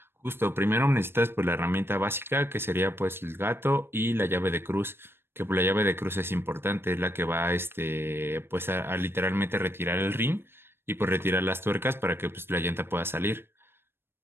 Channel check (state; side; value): late; left; 0.11 ms